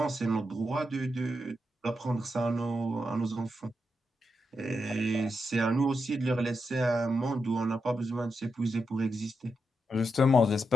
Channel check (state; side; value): normal; both; correlation 0.85